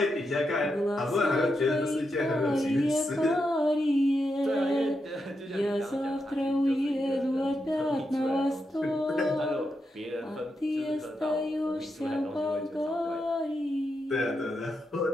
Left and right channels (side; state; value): both; normal; correlation 0.85